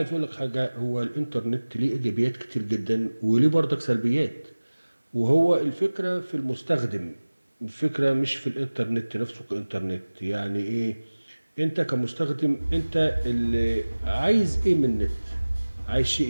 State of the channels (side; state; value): both; inverted; correlation -1.00